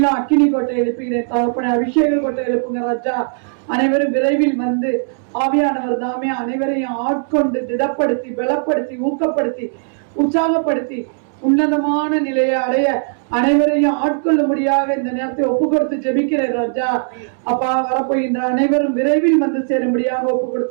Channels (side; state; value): left; silent; 67 dB below the other